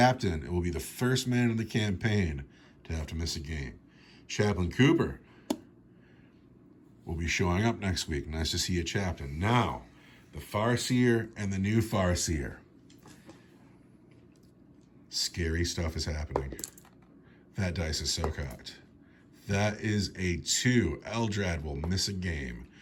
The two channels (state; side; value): identical; both; correlation 1.00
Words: will be the first man in the campaign to have to miss a game. Chaplain Cooper will be showing up next week. Nice to see you, Chaplain. Now, the Farseer and the new Farseer. Scary stuff is happening. That dice is so cocked. That is a 2. Eldrad will miss a game.